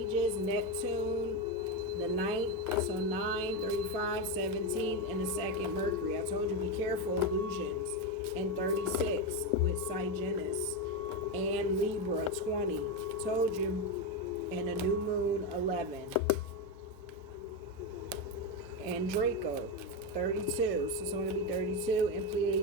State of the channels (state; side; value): normal; both; correlation 0.11